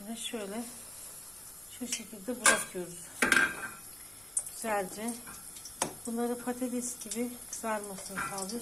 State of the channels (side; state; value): left; noise; rumble, 26 dB below the sound